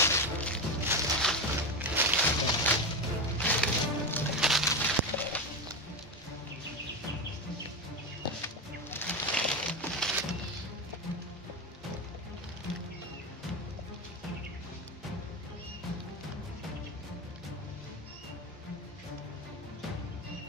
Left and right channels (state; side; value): normal; both; correlation 0.16